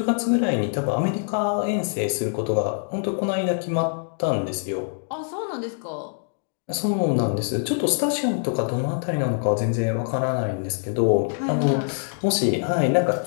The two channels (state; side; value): silent; right; digital silence